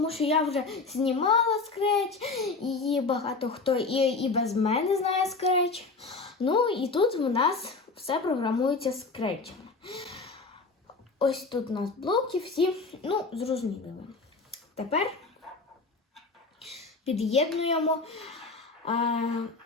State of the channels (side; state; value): right; quieter; 4.0 dB